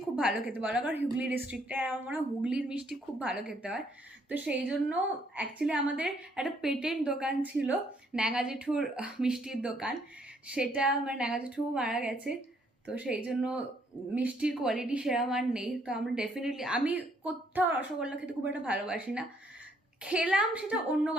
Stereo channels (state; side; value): normal; both; correlation 0.68